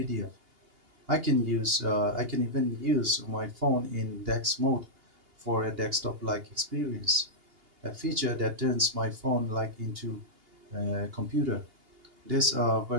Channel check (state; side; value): late; left; 2.8 ms